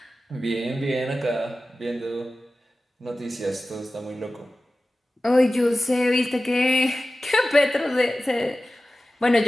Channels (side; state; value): both; normal; correlation 0.95